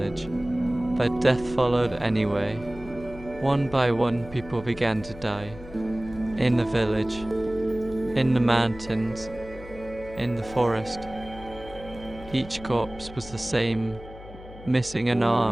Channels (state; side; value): noise; left; hum, 16 dB below the sound